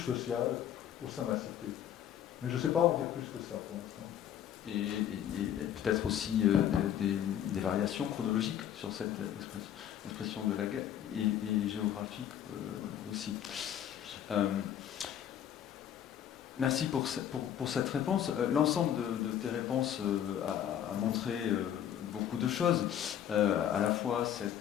sociales au sein de la cité. Mais je ne sais pas en dire plus que ça pour l'instant. Et peut-être aussi des variations chronologiques sur cette expression de la guerre, et géographique aussi. Merci pour cette réponse. L'ensemble de tes réponses a montré beaucoup de choses, à la fois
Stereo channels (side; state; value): right; quieter; 10.1 dB